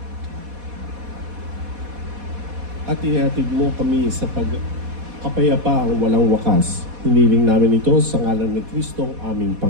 At ihatid mo kami sa pagkapayapaang walang wakas. Hiniling namin ito sa ngalan ni Kristo ang aming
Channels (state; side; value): late; left; 4.1 ms